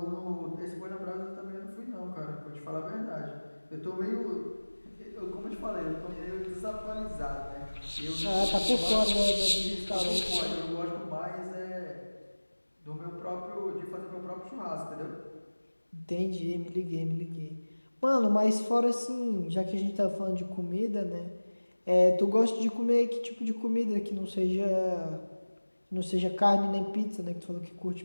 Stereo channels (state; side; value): inverted; both; correlation -1.00